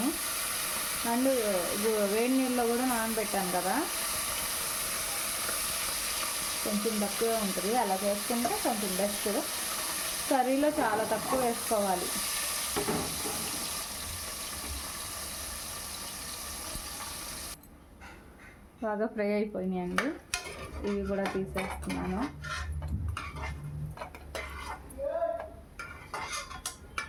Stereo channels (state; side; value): identical; both; correlation 1.00